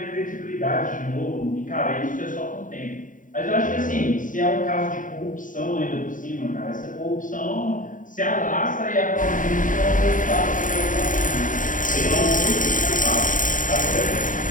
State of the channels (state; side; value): late; right; 0.38 ms